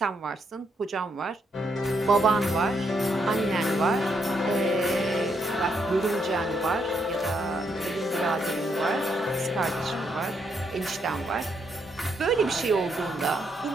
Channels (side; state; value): both; normal; correlation 0.76